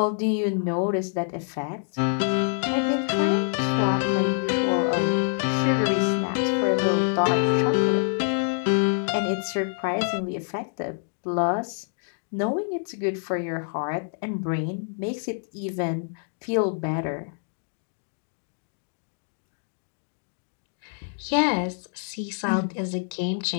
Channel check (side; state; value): right; silent; digital silence